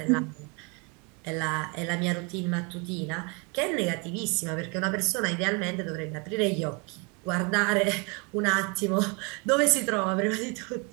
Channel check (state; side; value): quieter; left; 32.0 dB